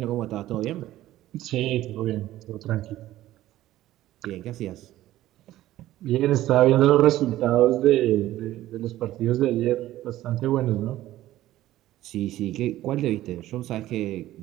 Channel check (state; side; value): quieter; left; 14.7 dB